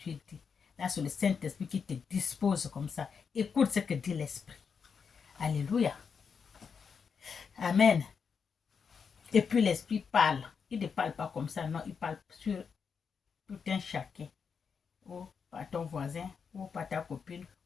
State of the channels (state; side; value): quieter; right; 6.1 dB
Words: dit. Là, c'est le Saint-Esprit qui te dispose comme ça. Écoute ce que dit l'Esprit. Alléluia. Amen. Et puis l'Esprit parle. Il ne parle pas comme ça, non, il parle sur tout un chacun. Ou par ton voisin, ou par ta copine,